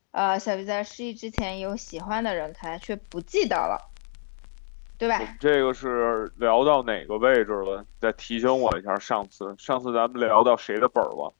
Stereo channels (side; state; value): right; silent; 61 dB below the other